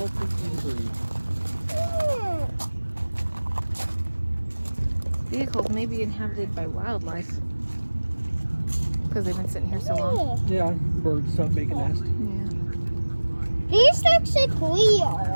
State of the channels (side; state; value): both; inverted; correlation -1.00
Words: in injury. Vehicles may be inhabited by wildlife because they've been sitting here so long. Yeah, birds stop making nests. Yeah. These looks like